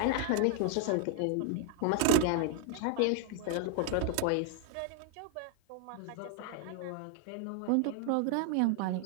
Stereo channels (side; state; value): both; different; correlation 0.00